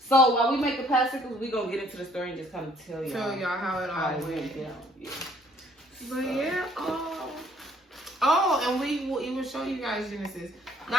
So while we make the popsicles, we gonna get into the story and just kind of tell y'all show y'all how it how all it went. went down. Yeah. But yeah, oh, and we will even show you guys Genesis,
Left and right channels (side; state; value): both; normal; correlation 0.62